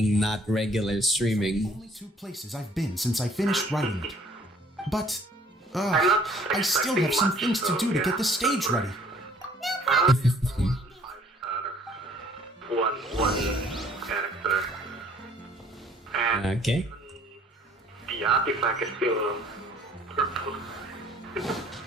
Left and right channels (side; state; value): both; normal; correlation 0.58